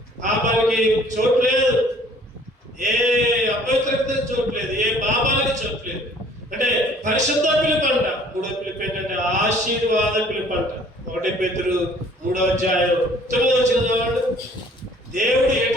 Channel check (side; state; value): both; normal; correlation 0.55